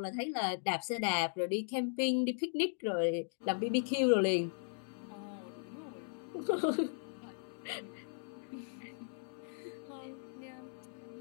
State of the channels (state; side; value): silent; right; digital silence